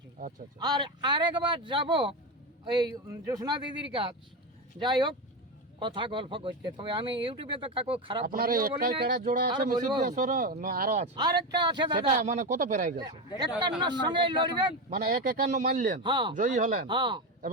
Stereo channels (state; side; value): normal; both; correlation 0.15